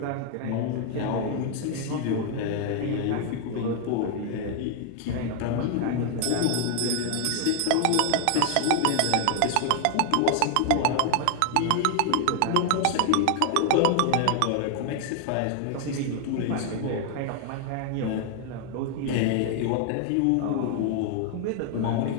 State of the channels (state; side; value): different; both; correlation 0.00